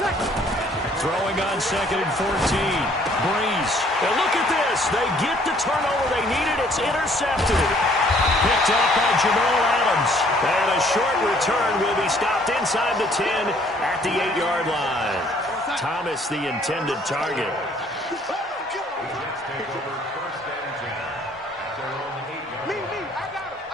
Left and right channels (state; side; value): normal; both; correlation 0.61